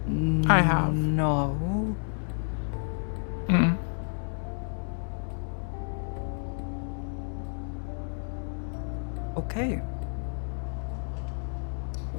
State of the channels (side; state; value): right; silent; 58 dB below the other